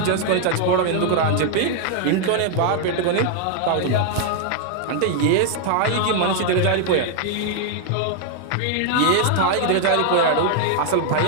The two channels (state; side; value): different; both; correlation 0.00